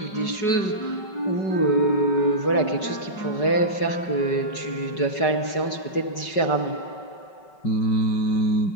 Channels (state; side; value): late; right; 5.3 ms